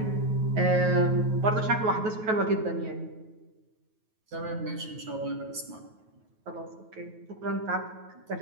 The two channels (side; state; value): left; late; 9.3 ms